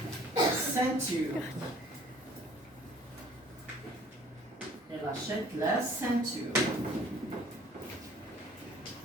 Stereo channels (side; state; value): both; normal; correlation 0.53